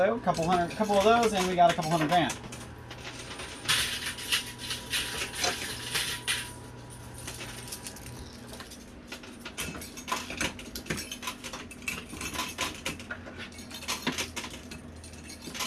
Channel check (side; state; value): both; identical; correlation 1.00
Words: a couple of those, and we got a couple hundred grand.